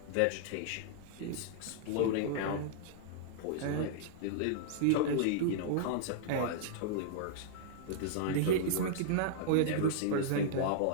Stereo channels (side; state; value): both; different; correlation -0.02